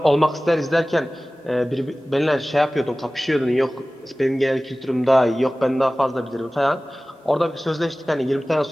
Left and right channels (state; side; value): normal; both; correlation 0.97